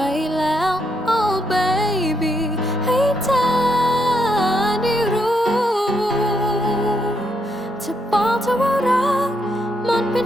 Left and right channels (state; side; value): normal; both; correlation 0.77